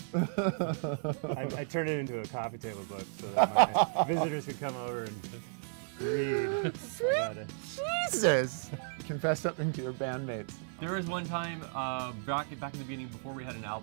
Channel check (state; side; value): silent; left; digital silence